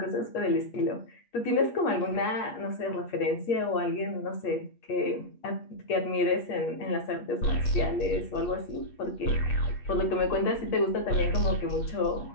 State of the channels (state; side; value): late; right; 8.4 ms